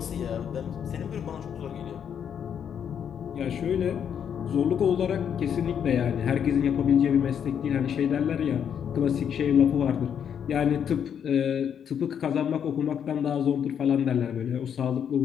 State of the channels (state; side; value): quieter; right; 8.3 dB